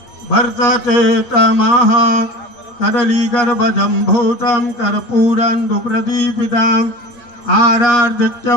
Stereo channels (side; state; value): right; late; 8.4 ms